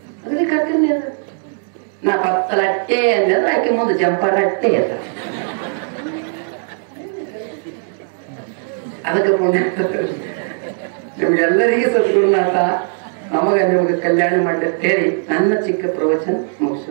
ಅದಕ್ಕೆ ಹಾಕ್ತೀನಿ ಅದು. ನಾ ಪತ್ತಲಟ್ಟೆ ಅಂದ್ರೆ ಆಕೆ ಮುಂದೆ ಜಂಪರಟ್ಟೆ ಅಂತ. ಅದಕ್ಕೆ ಪುಣ್ಯ ನಿಮ್ಗೆಲ್ಲರಿಗೂ ಸದ್ಗುರುನಾಥ ನಮಗ ನಿಮಗೆ ಕಲ್ಯಾಣ ಮಾಡಿ ಹೇಳಿ ನನ್ನ ಚಿಕ್ಕ ಪ್ರವಚನ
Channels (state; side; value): silent; left; digital silence